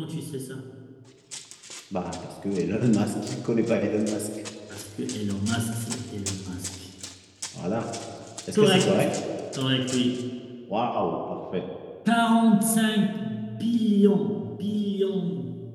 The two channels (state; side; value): identical; both; correlation 1.00